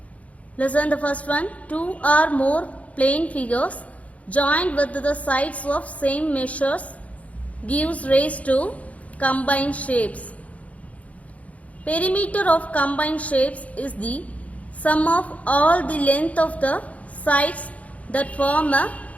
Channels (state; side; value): late; right; 0.067 ms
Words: Listen the first one. Two or more plane figures joined with the sides of same measures gives rise to combined shapes. Perimeter of combined shapes is the sum of all the length of the sides that form a